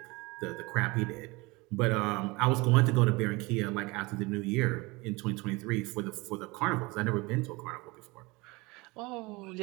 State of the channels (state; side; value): quieter; left; 24.2 dB